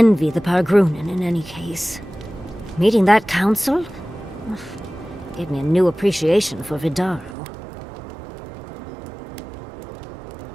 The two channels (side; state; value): left; drops out; at 7.4 s